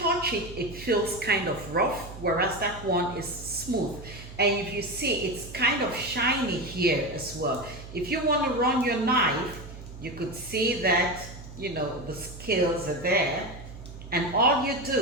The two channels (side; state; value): right; noise; hum, 14 dB below the sound